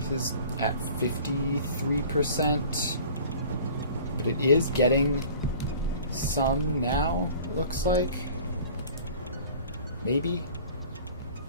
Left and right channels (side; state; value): both; inverted; correlation -0.45